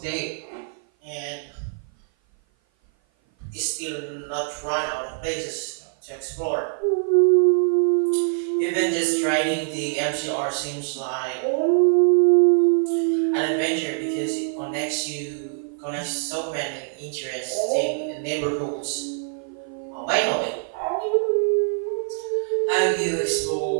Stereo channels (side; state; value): left; silent; 55 dB below the other